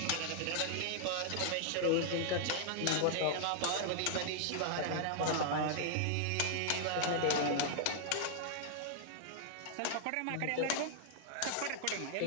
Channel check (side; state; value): both; different; correlation -0.01